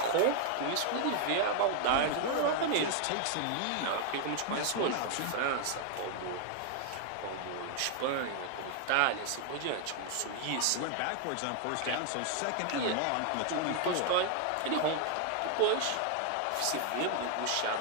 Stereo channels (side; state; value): both; different; correlation 0.00